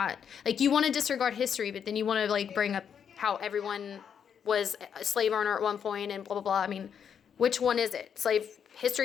like, you want to disregard history, but then you want to, like, bring up how everyone was a slave owner at one point and blah, blah, blah. I mean, which one is it? Slave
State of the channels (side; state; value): right; quieter; 7.7 dB